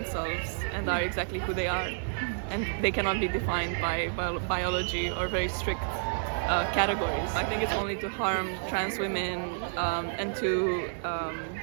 and are exactly who they are. And they cannot be defined by biology or very strict categories. I think it's only to harm trans women and to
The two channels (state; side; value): silent; left; 58 dB below the other